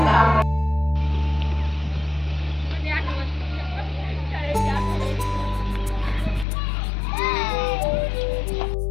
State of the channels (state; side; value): drops out; right; at 6.5 s